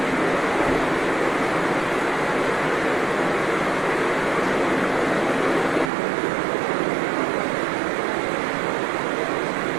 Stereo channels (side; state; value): left; drops out; at 5.9 s